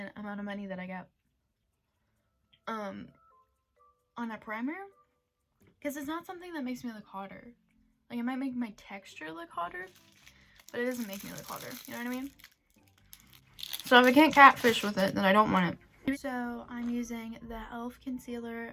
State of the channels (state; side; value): identical; both; correlation 1.00